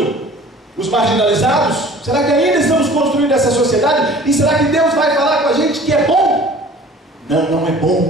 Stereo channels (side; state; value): both; normal; correlation 0.47